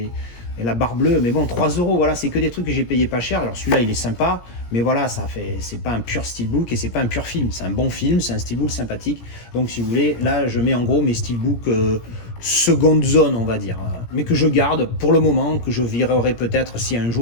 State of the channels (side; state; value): right; late; 17 ms